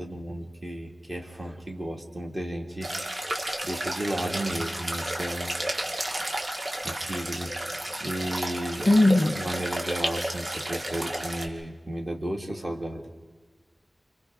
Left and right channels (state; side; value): normal; both; correlation 0.96